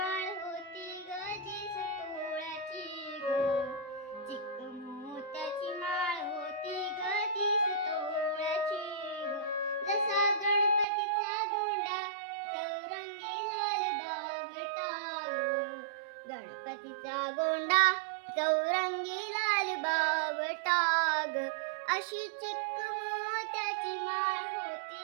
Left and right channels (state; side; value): drops out; left; at 10.9 s